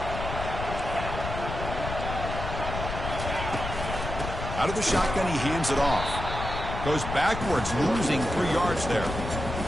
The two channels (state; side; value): noise; left; rumble, 6 dB below the sound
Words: Out of the shotgun, he hands it off. Goes backwards, losing 3 yards there.